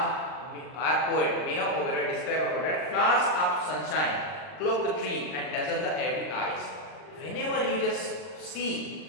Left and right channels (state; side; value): late; right; 39 ms